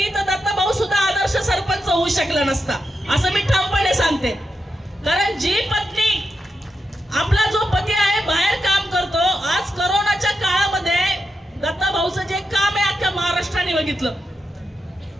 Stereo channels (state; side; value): normal; both; correlation 0.86